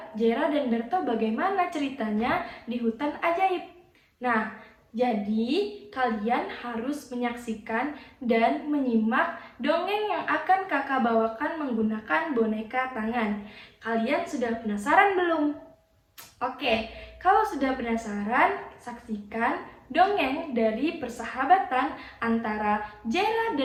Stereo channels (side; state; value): both; identical; correlation 1.00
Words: Jera dan Berto bagaimana ceritanya di hutan ajaib? Nah, jadi kalian harus menyaksikan dan menyimak dongeng yang akan kakak bawakan menggunakan boneka tangan. Kalian sudah penasaran belum? Oke, kalau sudah penasaran, saksikan dongeng dari persahabatan antara Jera